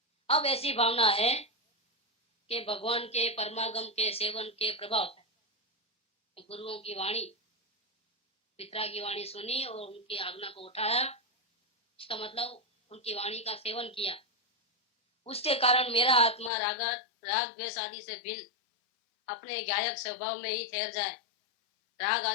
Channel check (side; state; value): right; drops out; at 16.5 s